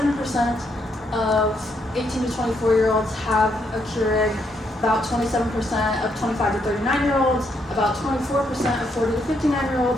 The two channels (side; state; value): both; normal; correlation 0.76